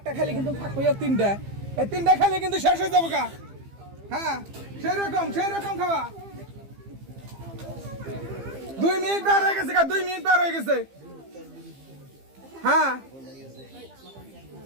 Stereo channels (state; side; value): late; left; 15 ms